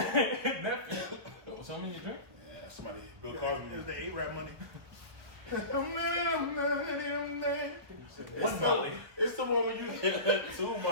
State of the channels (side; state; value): left; late; 1.5 ms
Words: What's on in your drink? Yeah, somebody, Bill Cosby. It's the A-Rap money. One Molly. It's the one when you get two